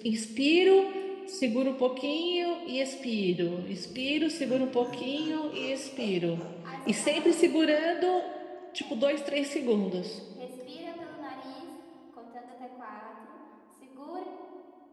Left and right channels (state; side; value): identical; both; correlation 1.00